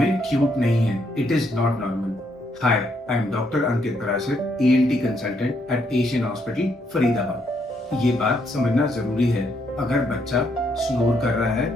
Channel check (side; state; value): both; normal; correlation 0.74